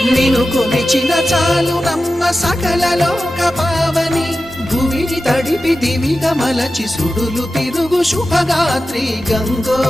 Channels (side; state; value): both; normal; correlation 0.93